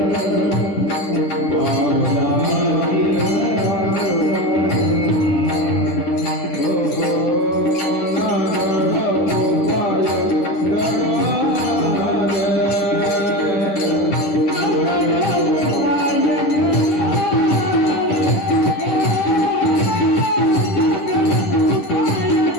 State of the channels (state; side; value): late; right; 10 ms